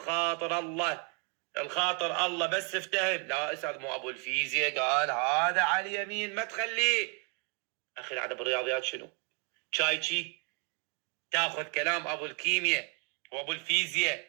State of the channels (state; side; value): quieter; left; 36.2 dB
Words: الخاطر الله بس افتهم. لا أستاذ مو أبو الفيزياء قال هذا على اليمين ما تخليه. أخي هذا بالرياضيات شنو؟ شايشي تاخذ كلام أبو الكيمياء وأبو الفيزياء